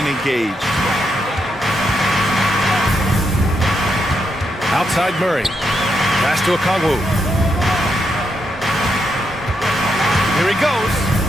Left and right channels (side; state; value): both; normal; correlation 0.81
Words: engaged. Outside Murray. Pass to Okongwu. Here he